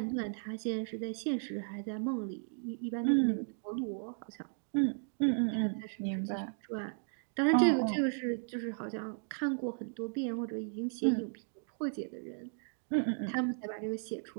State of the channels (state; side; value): silent; left; digital silence